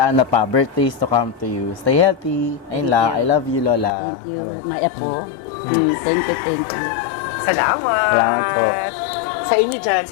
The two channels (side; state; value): right; drops out; at 4.0 s